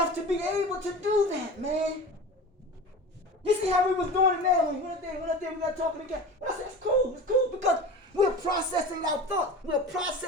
to be able to do that, man. You see how we was doing it now when we went there, we got talking again. But I said, it's cool because we're processing our thoughts. We're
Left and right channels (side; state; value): both; normal; correlation 0.33